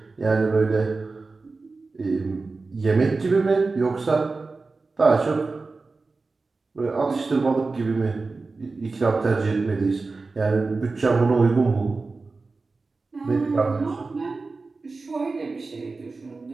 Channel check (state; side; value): quieter; left; 3.9 dB